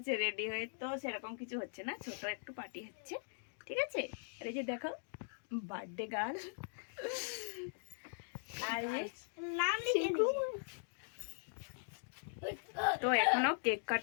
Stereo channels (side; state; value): right; silent; digital silence